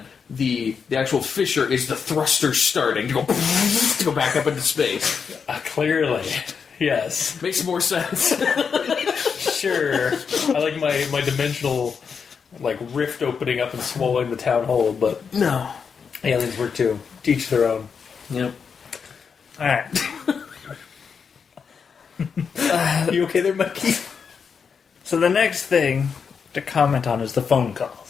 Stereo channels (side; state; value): right; quieter; 6.2 dB